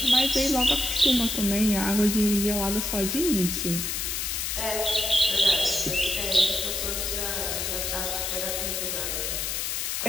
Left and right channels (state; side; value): noise; left; hiss, 1 dB below the sound